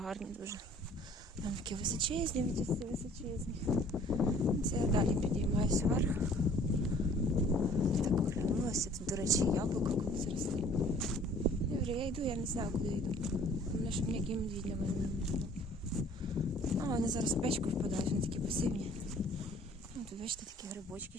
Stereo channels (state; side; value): normal; both; correlation 0.53